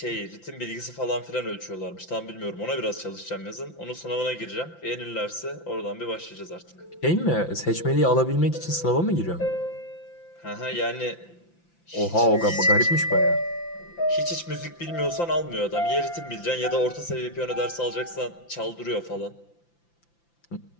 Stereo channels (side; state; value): right; late; 5.9 ms